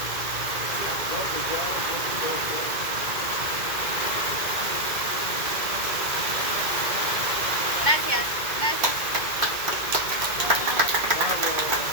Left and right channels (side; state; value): left; late; 2.1 ms